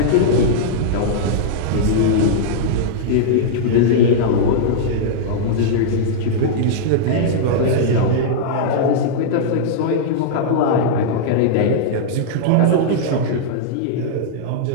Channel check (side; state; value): both; different; correlation -0.02